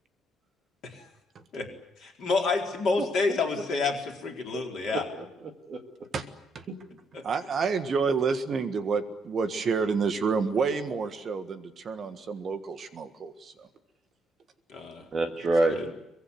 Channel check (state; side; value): normal; both; correlation 0.74